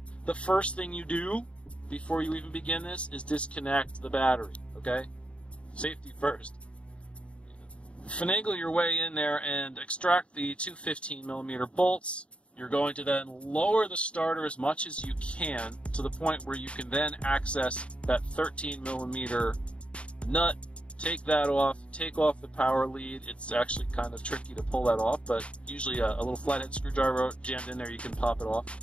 the first thing you do before you even begin this is disconnect the battery, okay? Safety first. Finagle your way in there and extract the two 15 millimeter bolts. You're going to then lower the starter as much as you can to the point where you can then access that 13 millimeter nut. Take that off, take off the power lead. It's actually kind of tricky to pull that off, but usually a little flathead screwdriver jammed in there, you can pop it off.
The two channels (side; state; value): right; late; 0.060 ms